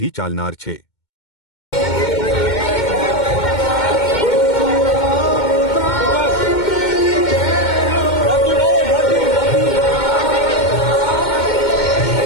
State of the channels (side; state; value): right; late; 2.2 ms